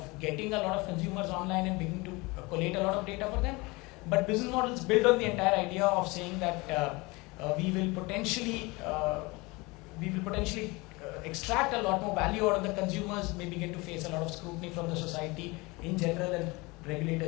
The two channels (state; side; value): quieter; right; 24.5 dB